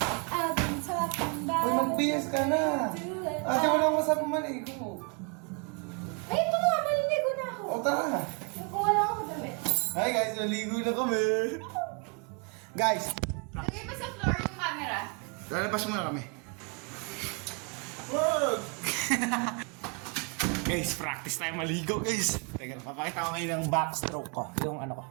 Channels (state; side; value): quieter; left; 34.3 dB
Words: I've been talking Uy, about mag-BS ka na. Ate, wala akong masabi maligo. tara. Kuha lang ako damit. Hi guys, naligo na kami. Guys, Lagay pa sa floor yung camera. lalabas muna kami. Wag! Guys, practice tayo maligo guys. Teka, papakita ko ngayon ng backstroke ko. Yung ano ko.